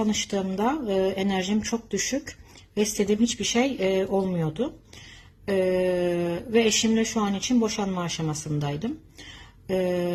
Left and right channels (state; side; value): identical; both; correlation 1.00